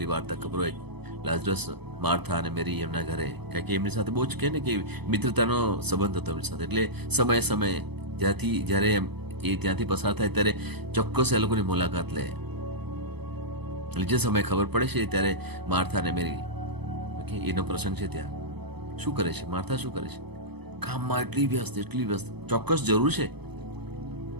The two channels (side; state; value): left; late; 0.98 ms